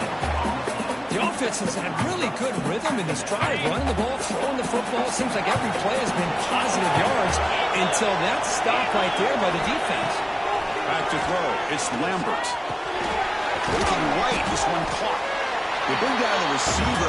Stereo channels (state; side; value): identical; both; correlation 1.00